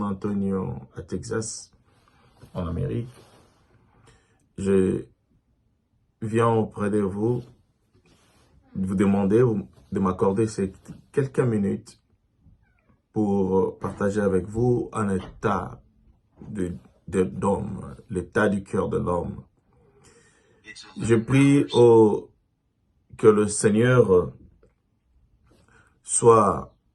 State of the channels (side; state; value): both; identical; correlation 1.00